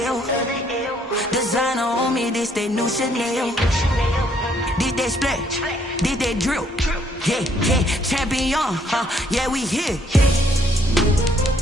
L. Designer on me, this that new Chanel. Did that splash, did that drill. Yeah, champion, yeah, we here.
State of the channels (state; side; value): normal; both; correlation 0.67